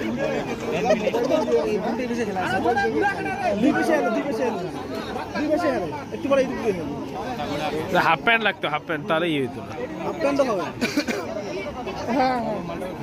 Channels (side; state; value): both; identical; correlation 1.00